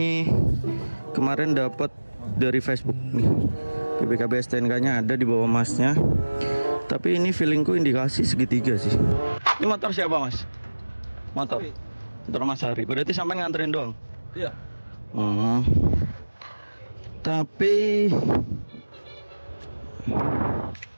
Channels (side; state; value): both; inverted; correlation -1.00